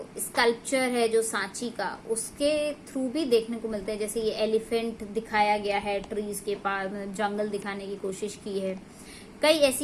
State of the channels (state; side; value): identical; both; correlation 1.00